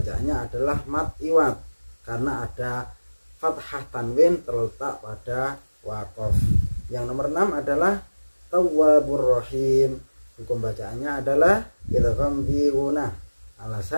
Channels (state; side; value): inverted; both; correlation -1.00